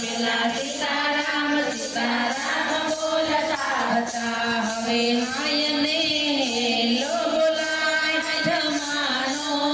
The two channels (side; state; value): right; noise; hum, 29 dB below the sound